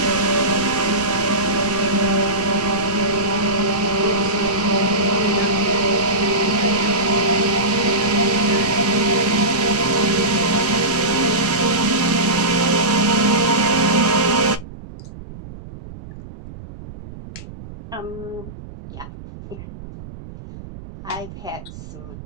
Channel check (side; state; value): right; noise; rumble, 14 dB below the sound